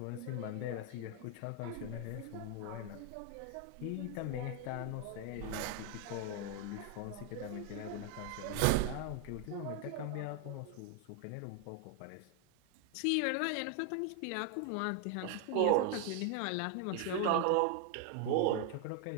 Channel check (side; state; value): both; different; correlation 0.00